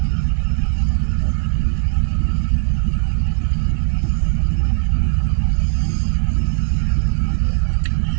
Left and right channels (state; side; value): silent; left; 64 dB below the other